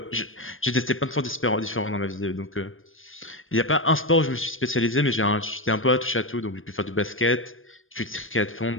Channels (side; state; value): right; late; 0.59 ms